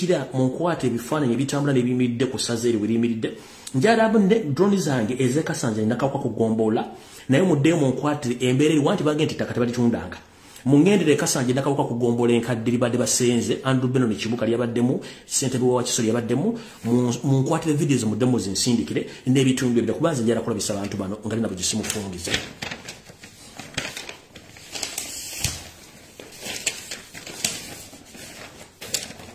munkwate ebifaananyi ebitambula n'ebiyimiridde ku ssaza eri weriyimiridde njala drone zange ezekasanja nakawuka kugombola naye muddeyo munkwatire embeera eri wanti bagenda ettaka tebalitundanga mungendere kasanje nakawuka kugombola enkadde libadde basenze Andrew Beno ne Kibuka lyabaddemu ssentebe wa Kisolo yabaddemu munkwatire videos muddemu zinsindikire n'ebitundu ebyo kubanza njala kulabisa abantu bano nga nabo gisimufungize.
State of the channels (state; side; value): identical; both; correlation 1.00